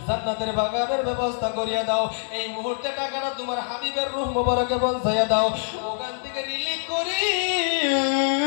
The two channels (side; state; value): right; silent; 57 dB below the other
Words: জান্নাতের বাগানের ব্যবস্থা করিয়া দাও। এই মুহূর্তে টাকাটা তোমার হাবিবের রূহ মোবারকে পৌঁছাইয়া দাও। ওখান থেকে রিলিজ করি